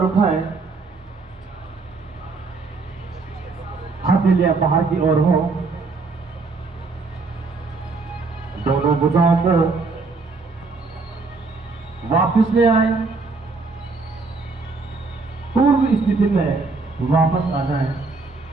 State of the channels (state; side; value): quieter; left; 4.0 dB